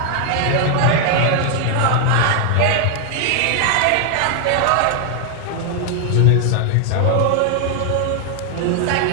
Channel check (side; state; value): both; different; correlation 0.00